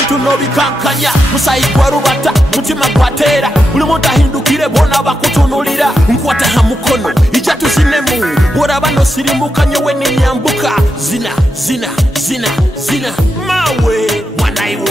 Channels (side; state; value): both; normal; correlation 0.86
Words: no bikankanya. Musayi kwa rubata, mutima kwatera. Uli monta hindukire bona bakutunulira. Nkwata hamukono, ijatu zinemu. Wora bano sirimuka nyowe ni nyambuka. Zina, zina, zina, zina. Mawe, wanai